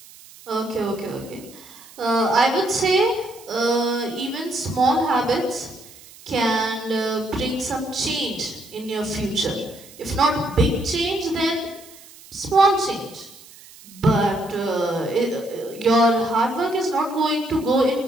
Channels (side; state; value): right; noise; hiss, 21 dB below the sound